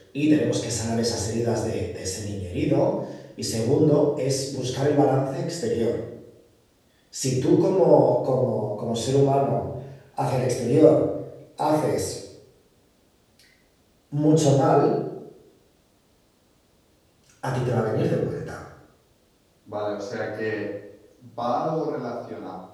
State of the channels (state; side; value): identical; both; correlation 1.00